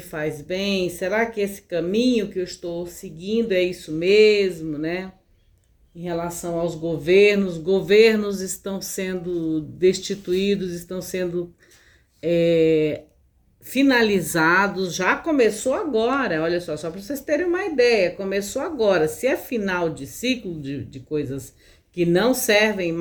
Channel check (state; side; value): identical; both; correlation 1.00